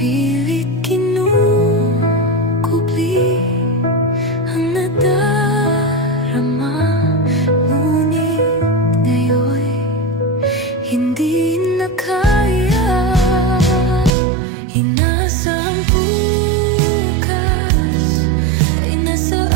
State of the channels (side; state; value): left; drops out; at 14.1 s